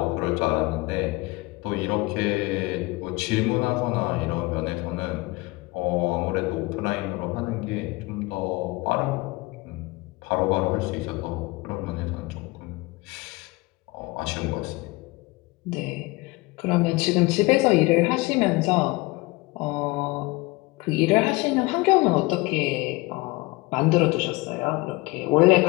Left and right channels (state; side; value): quieter; right; 22.9 dB